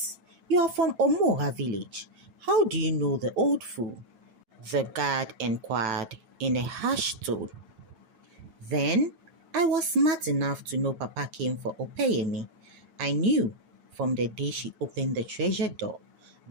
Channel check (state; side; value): late; left; 9.0 ms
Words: you are from Omoha village. How do you know the old fool?" the guard inquired in a harsh tone. Then I was smart enough to know Papa came for Opeyemi. I knew from the day she opened the treasure door